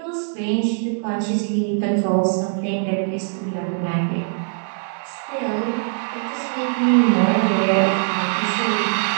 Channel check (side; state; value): left; silent; digital silence